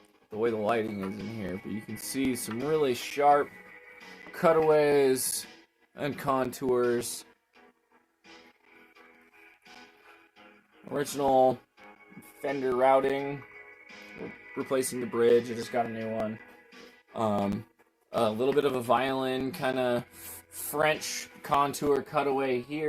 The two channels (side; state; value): both; identical; correlation 1.00